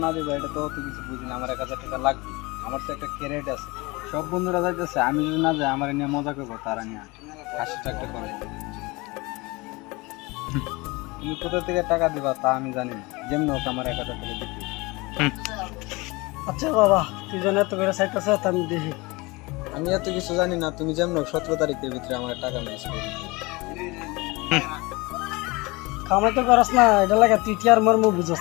না দিবা এটা তো অত কিছু বুঝি না। আমার 1000 টাকা লাগবে, আমার তো একটা ক্যারেট আছে। সব বন্ধুরা যাইতেছে, আমি যদি না যাই আমার নিয়ে মজা করবো, তারা নিয়ে হাসিটা একটা করবো। তুমি কোথা থেকে টাকা দিবা তা আমি জানি না, যেমন হোক আমার 1000 টাকা দিতে। আচ্ছা বাবা, তুই যেন এত করে চাইতেছ আমি দেখি। আমি এত কিছু জানি না, তুমি যেমন 17 তারিখের ভিতরে আমার টাকা ম্যানেজ করে দিও। কামাই তো করস না, এটা লাগে তুই টিয়ার মর্ম বুঝস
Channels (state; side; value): quieter; right; 24.2 dB